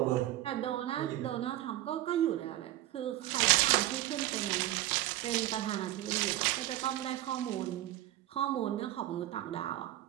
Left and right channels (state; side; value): quieter; left; 14.9 dB